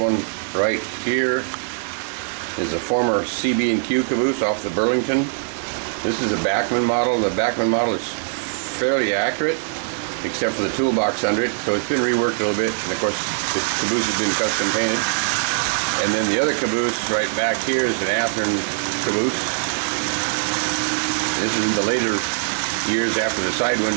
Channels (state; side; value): silent; left; digital silence